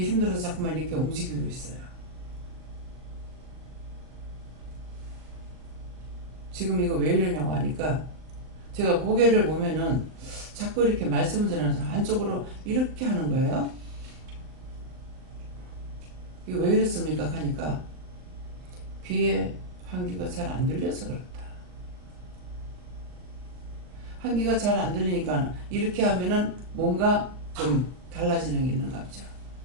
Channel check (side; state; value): left; late; 39 ms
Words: 힘들어서 자꾸만 이렇게 움직이고 있어요. 지금 이거 왜 이러냐고 하니까 제가 고개를 보면은 자꾸 이렇게 말씀을 드리면서 한쪽으로 이렇게 하는 거예요. 이거 왜 이랬습니까? 하니까 귀에 환기가 잘 안 들려서 그렇다. 환기가 잘 안 들리니까 이렇게 하면은 뭔가 좀 달라지는 게 있는가 보죠.